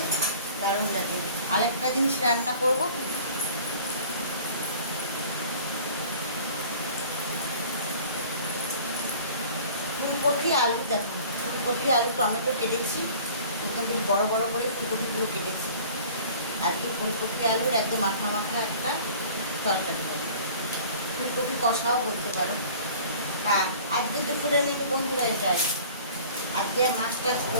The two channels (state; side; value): inverted; both; correlation -0.47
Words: দারুণ লাগে। আরেকটা জিনিস রান্না করবো, ফুলকপি আলু। দেখো ফুলকপি আলু টমেটো কেটেছি, একদম বেশ বড় বড় করে ফুলকপিগুলো কেটেছি। আজকে ফুলকপি আলুর একদম মাখা মাখা একটা তরকারি হবে, ফুলকপি কষাও বলতে পারো। হ্যাঁ, আজকে তো ফুলে নেবে বন্ধুরা। এটাই আজকে আর মাছ টাছ